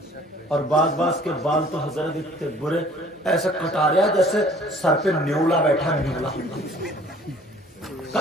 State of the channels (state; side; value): normal; both; correlation 0.53